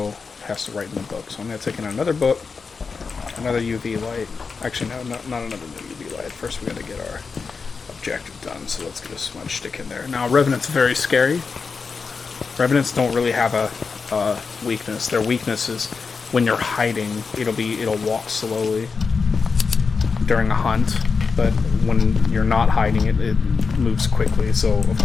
has to write in the book. So I'm going to take in another book, another UV light. Actually, no, not another UV light. First we got to get our objective done, so let's get a smudge stick in there. Now, Revenant's very scary. Revenants don't really have a weakness. Their weakness is when you're hiding, it'll walk slowly during a hunt, but when you're not hiding, it moves quickly. So, of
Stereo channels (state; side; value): quieter; right; 5.0 dB